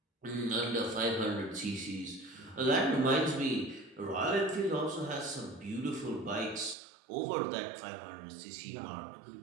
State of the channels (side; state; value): left; drops out; at 6.8 s